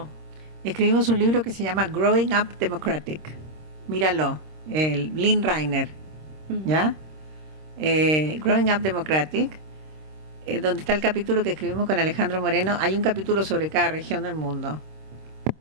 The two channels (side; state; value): left; late; 26 ms